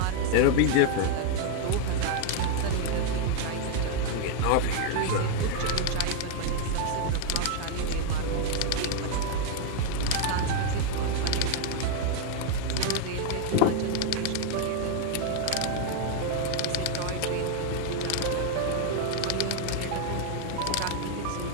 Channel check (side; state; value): both; different; correlation 0.00